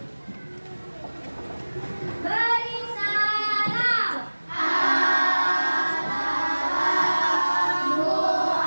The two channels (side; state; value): both; inverted; correlation -1.00